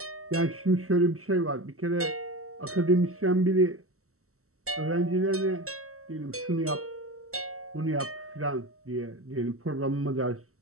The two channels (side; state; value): left; late; 0.63 ms